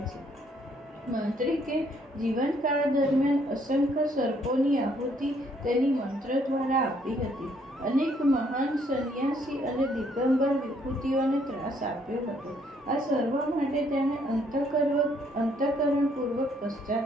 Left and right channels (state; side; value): normal; both; correlation 0.67